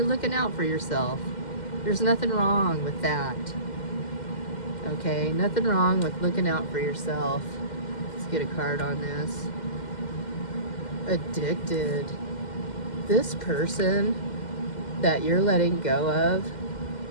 looking out for yourself. There's nothing wrong with that. Okay? Nothing wrong with looking out for yourself. Let's get a card on this. Addicted. This person that you're letting go of,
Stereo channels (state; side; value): late; right; 2.1 ms